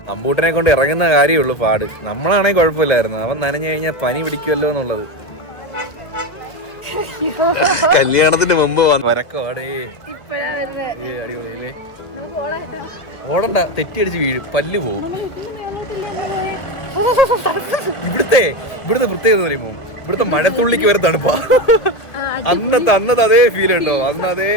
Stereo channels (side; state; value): right; late; 2.2 ms